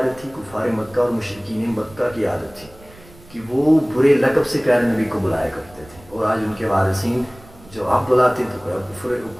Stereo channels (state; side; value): noise; right; rumble, 23 dB below the sound